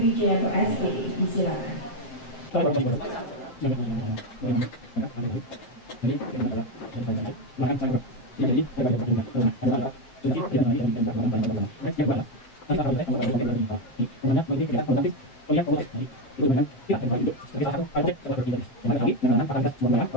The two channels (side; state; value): right; late; 7.6 ms